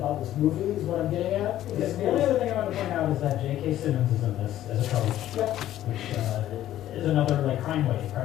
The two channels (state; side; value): quieter; right; 12.9 dB